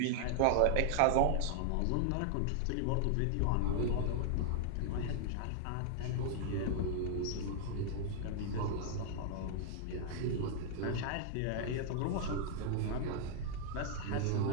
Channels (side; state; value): both; different; correlation -0.01